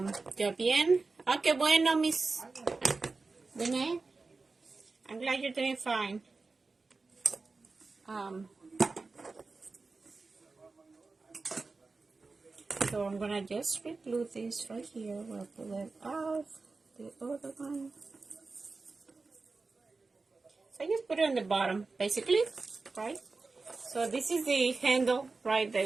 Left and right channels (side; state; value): left; quieter; 3.9 dB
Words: ¿Yo bien? Oh, qué bueno, Miss Dene. I'm glad you're doing fine. So I'm gonna just re-glue this right here. We'll pull it off the other one. So I just put it on the bottom, basically, right? So this is the handle, right? The